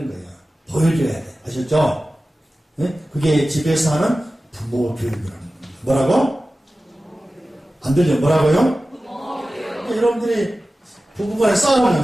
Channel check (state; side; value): normal; both; correlation 0.95